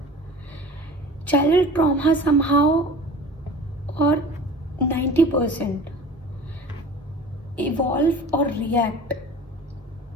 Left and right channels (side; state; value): both; normal; correlation 0.40